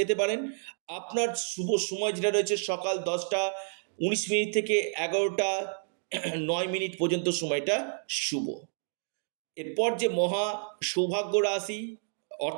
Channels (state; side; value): silent; left; digital silence